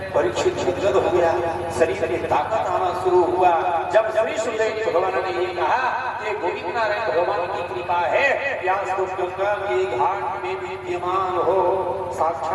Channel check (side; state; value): both; identical; correlation 1.00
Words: परीक्षित गदगद हो गया, शरीर में ताकत आना शुरू हुआ। जब श्री सुखदेव भगवान ने ये कहा कि गोविंद नारायण भगवान की कृपा है, व्यास तो गंगा के घाट में विद्यमान हो,